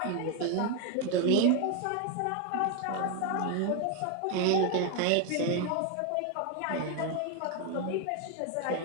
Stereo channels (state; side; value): different; both; correlation 0.01